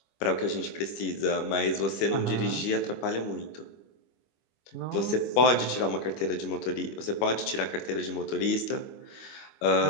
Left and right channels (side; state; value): right; late; 25 ms